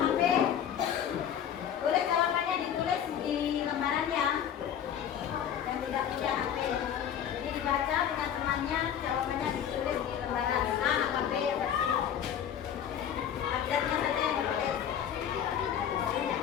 boleh jawabannya ditulis di lembarannya. Yang tidak punya HP, jadi dibaca dengan temannya, jawabannya ditulis di lembaran. A, HP, update-nya saja yang ditulis.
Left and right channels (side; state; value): right; quieter; 9.3 dB